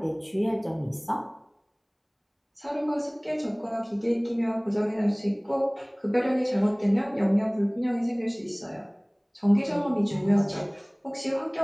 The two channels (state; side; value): identical; both; correlation 1.00